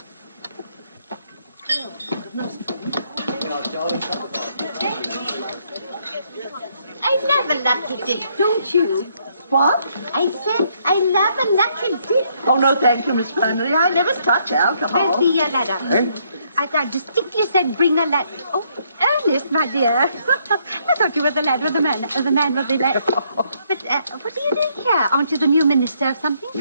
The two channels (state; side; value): inverted; both; correlation -0.71